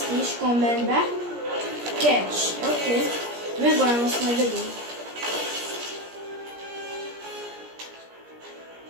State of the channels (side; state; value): left; late; 17 ms